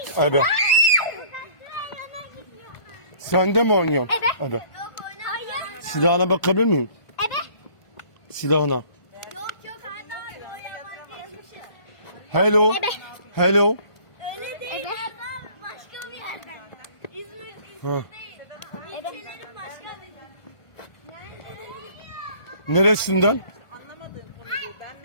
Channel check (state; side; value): late; right; 1.5 ms